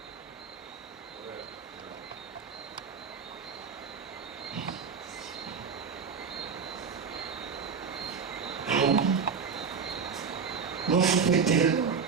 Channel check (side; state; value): left; quieter; 5.9 dB